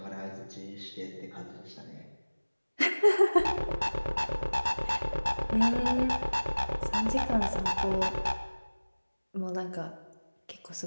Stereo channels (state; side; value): inverted; both; correlation -1.00